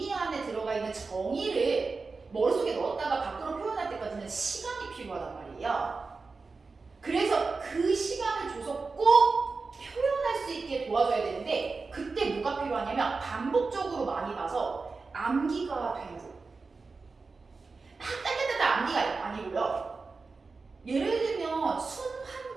안에 들어가 있는 정의를 머릿속에 넣었다가 밖으로 표현할 때까지는 시간이 필요하단 말이에요. 그래서 그 시간을 줘서 꼭 표현할 수 있게 도와줘야 되는데, 그때 뭐가 필요하냐면 반복적으로 많이 봐서 암기가 돼야 돼요. 따따따따 암기가 아니고요. 예를 들면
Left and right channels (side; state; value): left; quieter; 4.2 dB